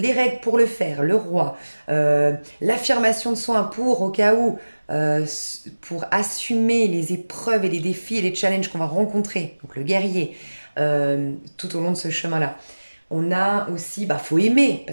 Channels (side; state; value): both; inverted; correlation -1.00